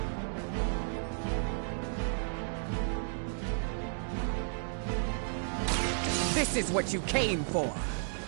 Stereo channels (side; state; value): left; silent; digital silence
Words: This is what you came for.